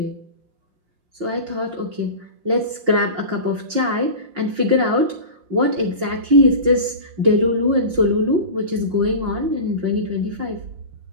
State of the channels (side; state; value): left; late; 5.7 ms